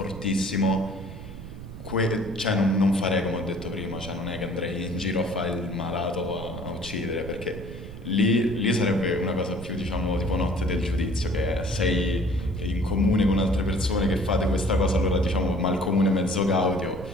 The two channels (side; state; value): right; noise; rumble, 12 dB below the sound